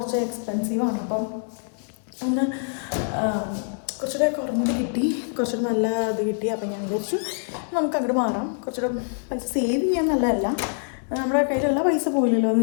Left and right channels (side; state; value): right; silent; 62 dB below the other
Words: എക്സ്പെൻസീവാണ്. അപ്പം ഒന്ന് കുറച്ചുകൂടെ കുറഞ്ഞത് കിട്ടി, കുറച്ചുകൂടെ നല്ല ഇത് കിട്ടി. അപ്പം ഞാൻ വിചാരിച്ചു നമുക്ക് അങ്ങോട്ട് മാറാം. കുറച്ചുകൂടെ പൈസ സേവ് ചെയ്യാൻ നല്ലതല്ല, നമ്മുടെ കയ്യിലുള്ള പൈസ പോയില്ലല്ലോ